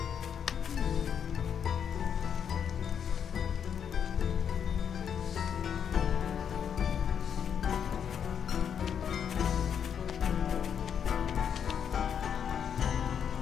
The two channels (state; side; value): quieter; right; 8.0 dB